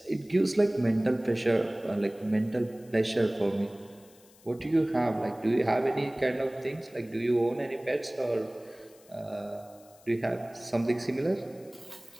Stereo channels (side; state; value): left; noise; hiss, 27 dB below the sound